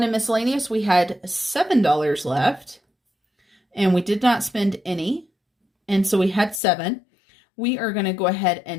and Miscellaneous, we had $7 left, and we did not spend any, and so we had 7. We are going to go ahead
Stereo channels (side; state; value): right; drops out; at 6.6 s